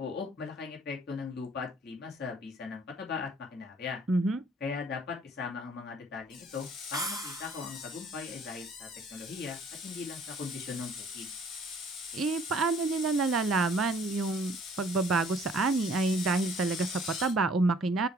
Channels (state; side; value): normal; both; correlation 0.58